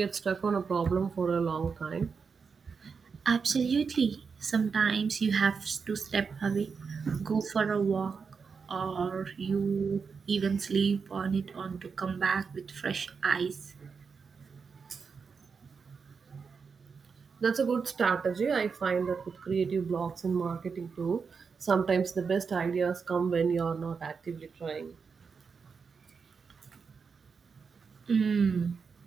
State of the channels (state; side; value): quieter; left; 5.5 dB